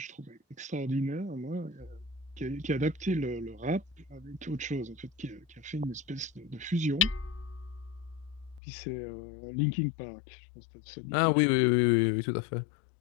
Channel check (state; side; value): drops out; right; at 8.6 s